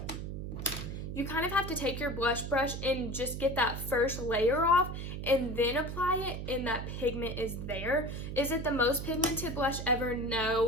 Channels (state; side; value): noise; right; hum, 6 dB below the sound